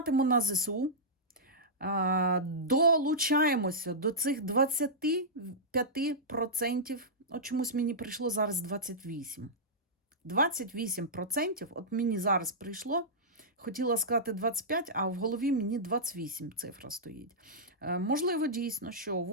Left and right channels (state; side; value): normal; both; correlation -0.14